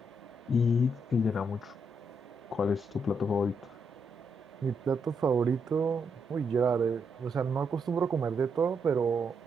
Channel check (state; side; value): normal; both; correlation 0.79